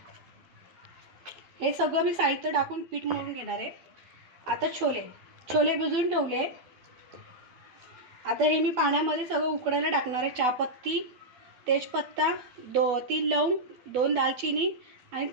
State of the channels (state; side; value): late; left; 12 ms